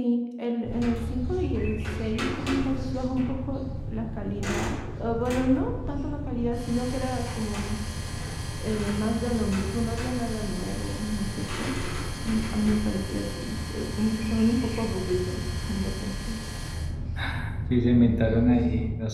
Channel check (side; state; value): both; identical; correlation 1.00